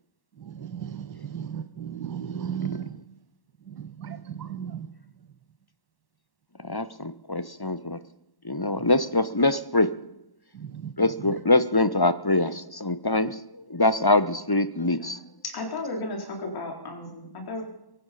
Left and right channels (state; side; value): late; right; 1.1 ms